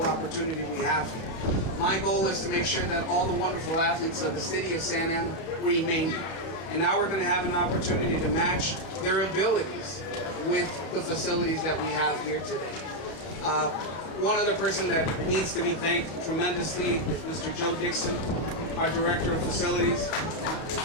opportunity we have here. My goal is to make sure that all the wonderful athletes of the city of Santa Ana remain here. And now we're going to have an opportunity to match their abilities with the facilities that we have here today. One other person that needs to be thanked tremendously is Mr. Joe Dixon, our Director of Facilities.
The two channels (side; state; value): right; late; 31 ms